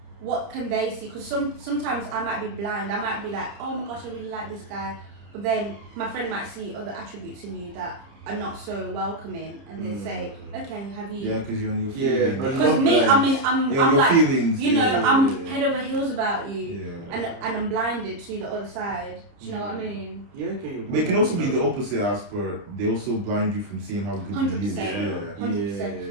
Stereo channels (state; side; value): late; left; 30 ms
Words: what can they see? Because sometimes I might be blind. I might be like, oh my gosh, I really like this guy, but then my friend might see other attributes in you that are not so welcoming, and they say, okay, have you? Yeah, because you're on your Yeah, feelings. but Because me, I mean, I'm Your like, feelings. you know, yeah. I'm head over heels about you, Yeah. and I'm blinded to the other side. Do you know what I mean? Yeah, okay. But it can also be the opposite as per they also blind you from seeing how good he is. 100%. Yeah. 100%. Yeah.